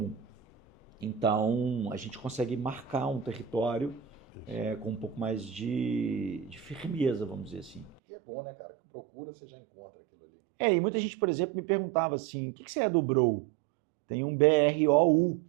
Então, a gente consegue marcar um território com um pouco mais de firmeza, vamos dizer assim. E é bom, né, cara? Que procura, você já encontra aquilo ali. E muita gente, por exemplo, me perguntava assim, o que você é do Brou? Tem um BROU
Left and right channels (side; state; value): left; drops out; at 8.0 s